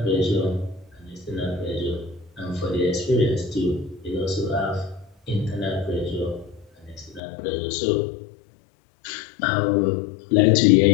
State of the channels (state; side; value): drops out; right; at 7.2 s